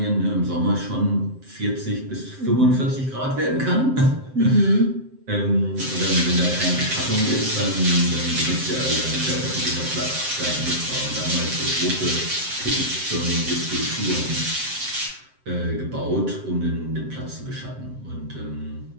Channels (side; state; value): left; late; 7.6 ms